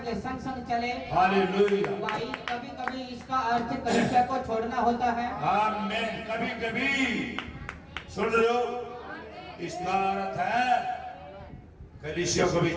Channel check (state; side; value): identical; both; correlation 1.00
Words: के संग संग चले। हालेलुया। भाई कभी कभी इसका अर्थ कलीसिया को छोड़ना होता है। आमीन। कभी कभी सुन रहे हो, इसका अर्थ है कलीसिया को भी